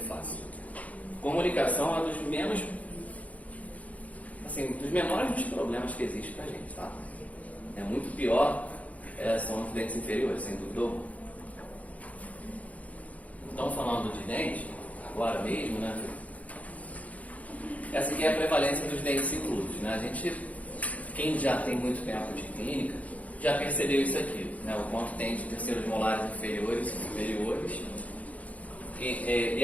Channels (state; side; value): late; right; 0.070 ms